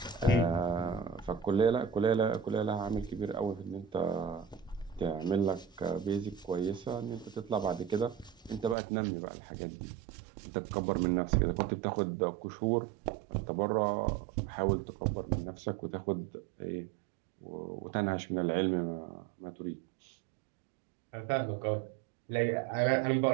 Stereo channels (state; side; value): drops out; left; at 8.8 s